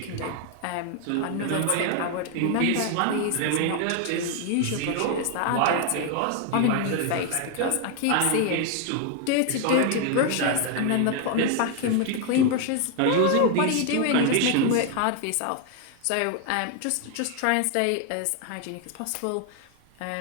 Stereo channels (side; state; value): both; different; correlation 0.00